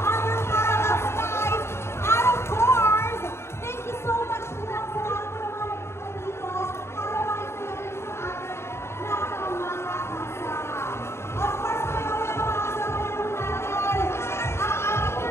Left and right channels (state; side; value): late; right; 0.12 ms